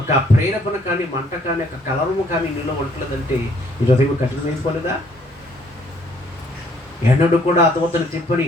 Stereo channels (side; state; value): both; normal; correlation 0.64